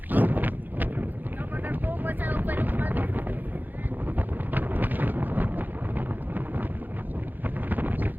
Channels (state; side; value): late; left; 0.086 ms